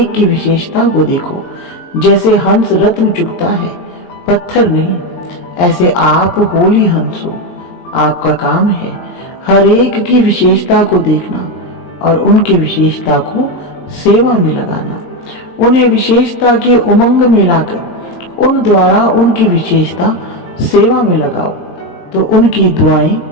की विशेषता को देखो। जैसे हंस रत्न चुगता है, पत्थर नहीं, ऐसे आप होली हंस हो। आपका काम है हर एक की विशेषता को देखना और उनकी विशेषता को सेवा में लगाना। उन्हें विशेषता के उमंग में लाकर उन द्वारा उनकी विशेषता सेवा में लगाओ, तो उनकी दुआएं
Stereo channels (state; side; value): late; right; 23 ms